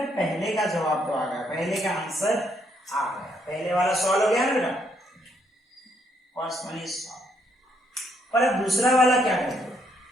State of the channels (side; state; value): both; normal; correlation 0.72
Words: पहले का जवाब तो आ गया, पहले का आंसर आ गया, पहले वाला सॉल्व हो गया ना बेटा, फर्स्ट वन इज सॉल्व। पर अब दूसरा वाला क्या करेंगे,